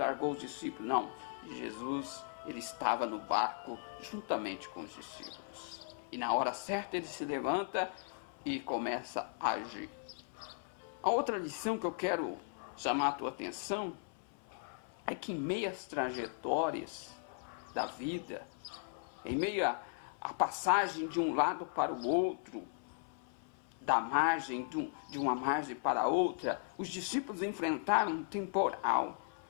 os discípulos. Não, Jesus ele estava no barco juntamente com os discípulos. E na hora certa ele se levanta e começa a agir. A outra lição que eu quero chamar a tua atenção é que em meio às trajetórias da vida, em meio à passagem de um lado para o outro, da margem, de uma margem para outra, os discípulos enfrentaram um temporal.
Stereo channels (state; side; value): silent; right; 53 dB below the other